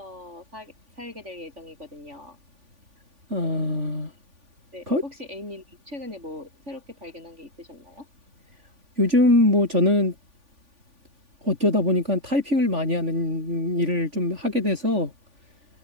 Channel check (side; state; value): left; late; 3.5 ms